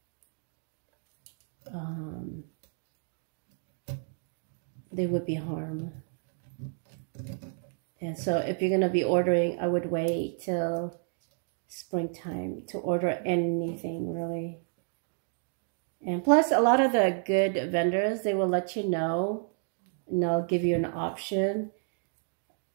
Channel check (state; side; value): silent; left; 57 dB below the other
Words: harm. And so if you're going to be ordering, I would wait till springtime to order anything really. And plus, a lot of the good vendors, they will let you know, and they'll give you an option